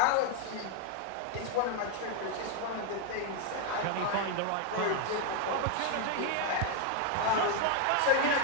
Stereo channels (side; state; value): both; different; correlation 0.01